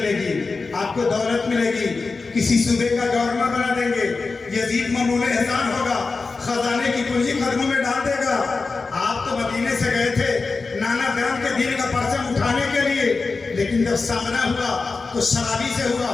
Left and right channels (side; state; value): right; quieter; 4.1 dB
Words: گی، آپ کو دولت ملے گی، किसी सूबे का गवर्नर बना देंगे, यजीद ममनून एहसान होगा, खजाने की पूंजी कदमों में डाल देगा। आप तो मदीने से गए थे नाना ग्राम के दीन का परचम उठाने के लिए, लेकिन जब सामना हुआ तो शराबी से हुआ,